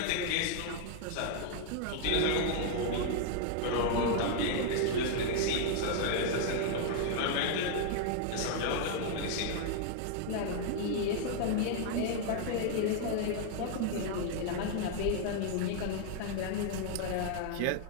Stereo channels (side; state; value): both; different; correlation 0.00